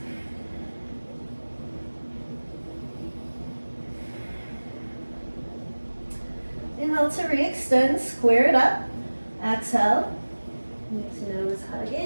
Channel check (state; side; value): inverted; both; correlation -1.00